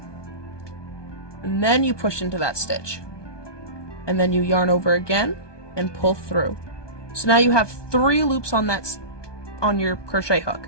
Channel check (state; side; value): late; right; 1.2 ms